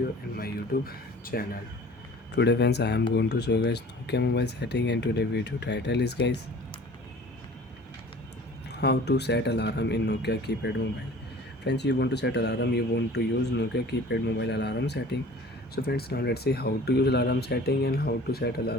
in my YouTube channel. Today friends, I am going to show you guys Nokia mobile setting, and today video title is guys how to set alarm in Nokia keypad mobile. Friends, you want to set alarm, you want to use Nokia keypad mobile alarm setting. So friends, now let's see how to use alarm setting and how to set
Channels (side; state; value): both; normal; correlation 0.46